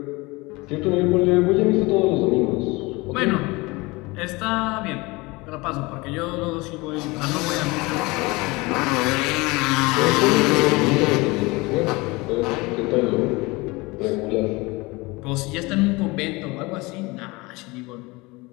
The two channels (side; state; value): right; quieter; 23.8 dB